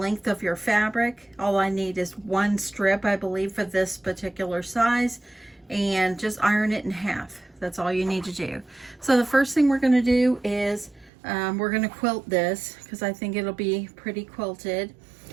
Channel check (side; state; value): left; drops out; at 11.1 s